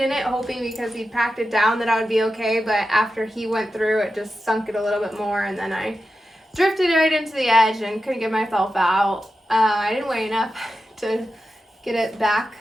it, hoping because he packed it down that I would be okay. But after he went through, it just sunk it a little bit more, and then I drifted right into the edge and couldn't get myself out. I didn't weigh enough to get it back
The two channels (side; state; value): both; normal; correlation 0.91